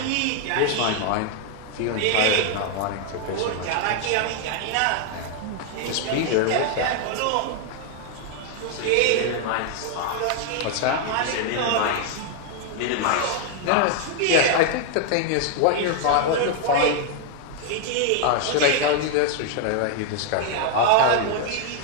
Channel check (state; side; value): different; both; correlation 0.00